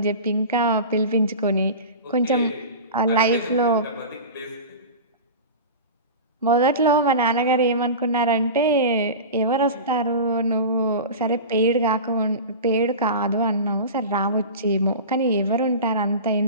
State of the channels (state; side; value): inverted; both; correlation -0.30